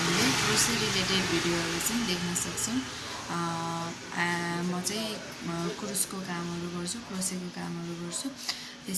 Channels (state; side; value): identical; both; correlation 1.00